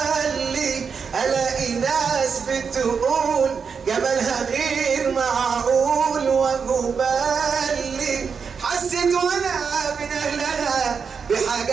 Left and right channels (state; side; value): quieter; left; 6.0 dB